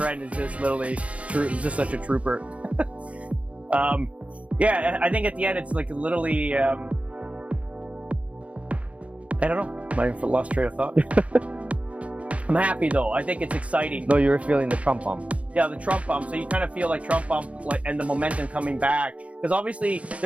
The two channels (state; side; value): late; left; 0.064 ms